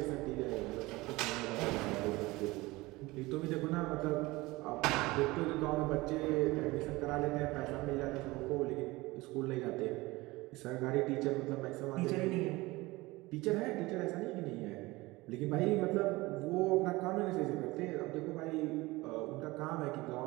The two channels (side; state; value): left; quieter; 21.1 dB